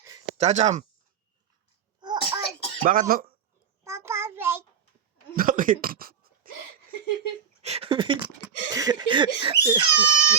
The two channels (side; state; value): left; quieter; 7.7 dB